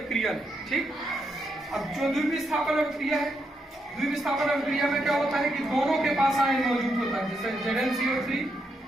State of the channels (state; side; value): normal; both; correlation 0.80